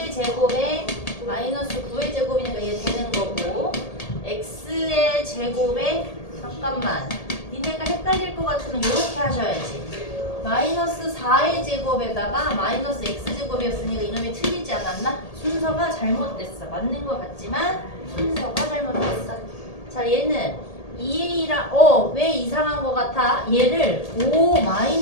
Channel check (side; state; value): right; late; 1.8 ms